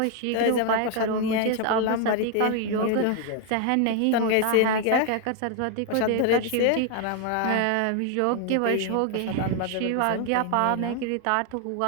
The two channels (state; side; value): different; both; correlation 0.00